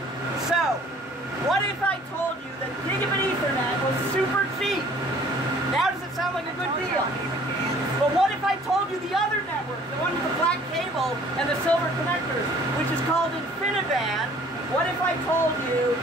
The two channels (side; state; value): both; normal; correlation 0.54